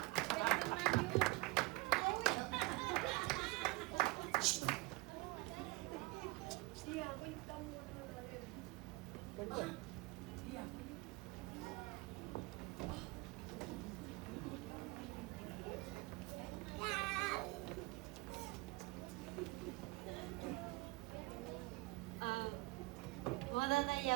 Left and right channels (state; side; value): quieter; left; 23.4 dB